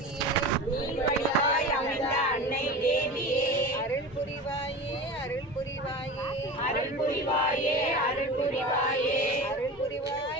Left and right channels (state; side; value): normal; both; correlation 0.31